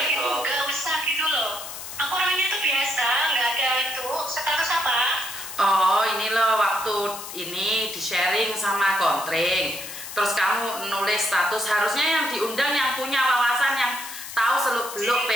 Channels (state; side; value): noise; left; hiss, 10 dB below the sound